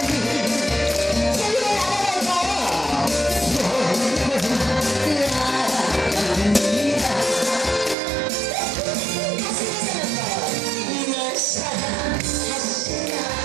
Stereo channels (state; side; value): drops out; left; at 8.0 s